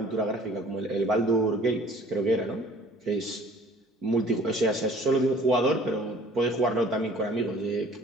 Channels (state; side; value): normal; both; correlation 0.51